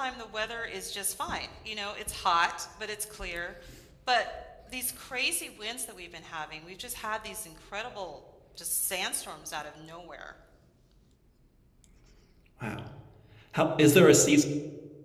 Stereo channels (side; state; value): both; identical; correlation 1.00